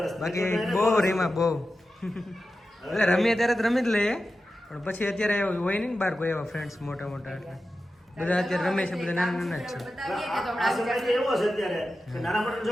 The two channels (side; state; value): both; normal; correlation 0.92